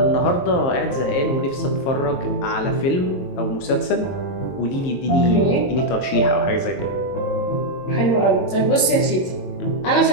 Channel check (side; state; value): right; late; 22 ms